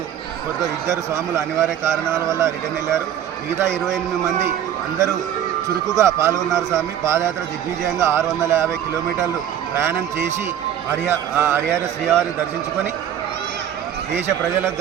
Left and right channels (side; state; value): left; quieter; 10.2 dB